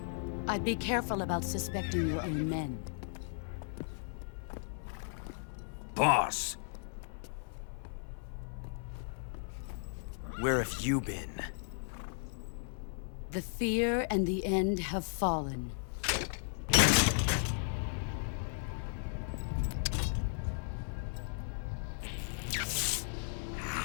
I'd be careful about suspecting your own men. Boss! Where have you been? The fear and the end have fallen.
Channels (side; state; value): right; silent; 54 dB below the other